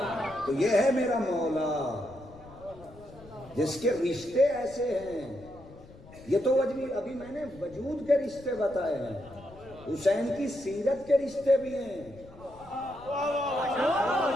تو یہ ہے میرا مولا جس کے رشتے ایسے ہیں. یہ تو ابھی میں نے وجود کے رشتے بتائے ہیں, حسین کی سیرت کے رشتے بھی ہیں.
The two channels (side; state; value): left; noise; rumble, 20 dB below the sound